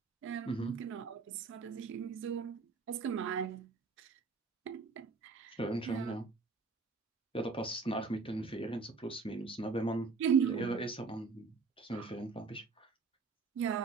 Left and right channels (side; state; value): left; quieter; 4.6 dB